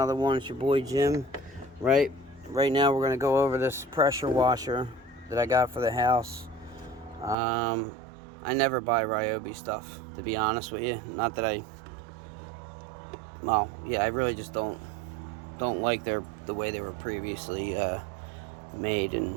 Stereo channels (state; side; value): drops out; left; at 7.4 s